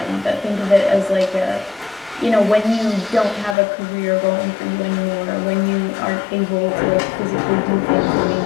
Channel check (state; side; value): drops out; right; at 3.6 s